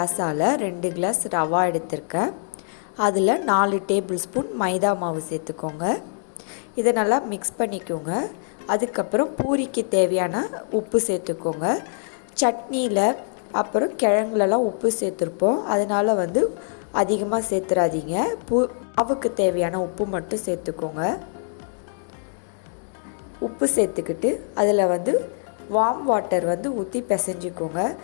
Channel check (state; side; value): silent; right; digital silence